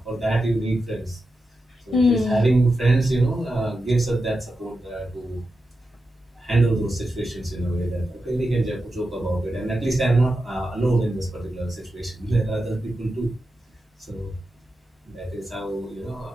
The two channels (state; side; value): normal; both; correlation 0.90